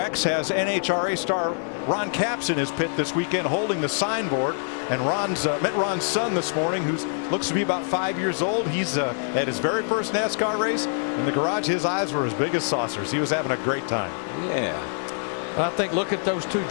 has NHRA star Ron Capps in his pit this weekend holding the signboard. And met Ron's son this morning, who looks to be about 5 years old. He's at his very first NASCAR race. In the garage, his eyes were as big as saucers. He was having a great time. Yeah. I think look at those two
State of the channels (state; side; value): silent; right; 62 dB below the other